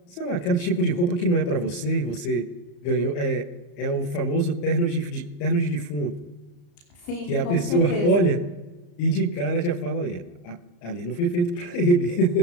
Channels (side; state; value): right; late; 34 ms